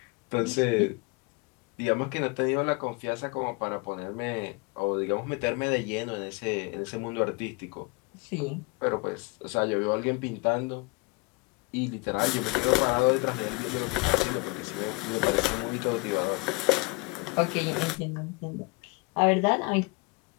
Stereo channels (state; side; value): quieter; right; 27.0 dB